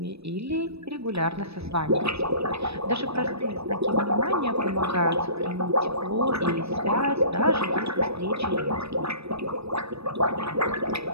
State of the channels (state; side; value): late; left; 0.78 ms